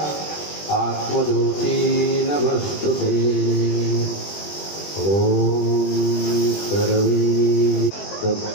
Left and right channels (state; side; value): late; right; 20 ms